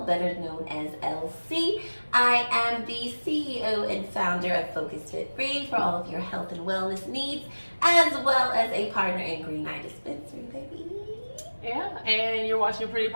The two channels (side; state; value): both; inverted; correlation -1.00